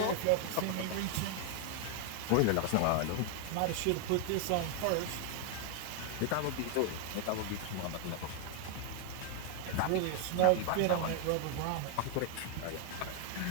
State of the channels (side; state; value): both; different; correlation 0.00